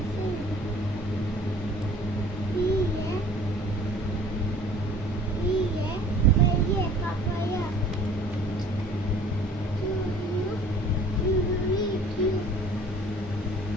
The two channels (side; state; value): both; normal; correlation 0.50